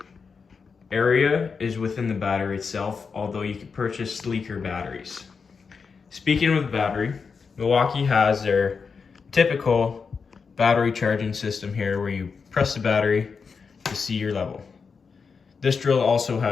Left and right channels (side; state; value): right; quieter; 5.4 dB